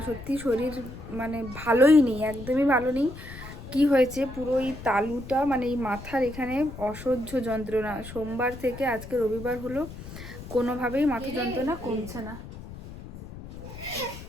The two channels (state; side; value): noise; left; rumble, 13 dB below the sound